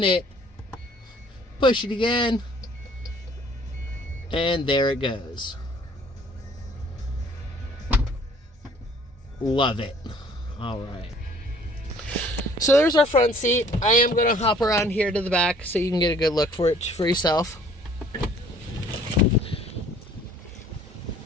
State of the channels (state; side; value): normal; both; correlation 0.57